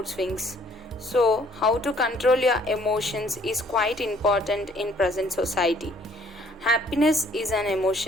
swings. So, how to control your emotions is quite important in present society. Happiness is an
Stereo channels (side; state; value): both; normal; correlation 0.61